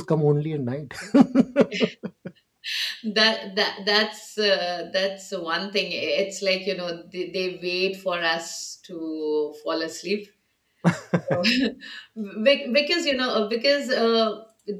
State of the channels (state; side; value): identical; both; correlation 1.00